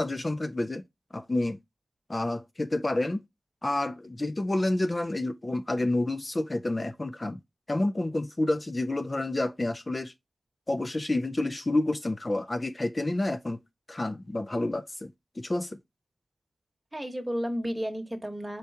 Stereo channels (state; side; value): normal; both; correlation 0.98